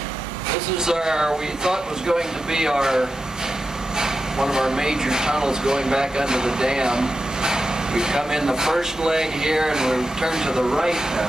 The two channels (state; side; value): normal; both; correlation 0.90